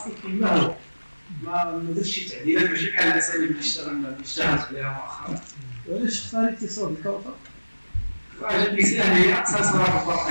كما هو ما درتش شي تعديلات ماشي بحال الاساليب اللي اشتغلت عليها مؤخرا. وعلاش اختاريتي صوت الكوثر؟ عجبني سهل هي اقصى صراحه الفرق.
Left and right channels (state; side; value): inverted; both; correlation -1.00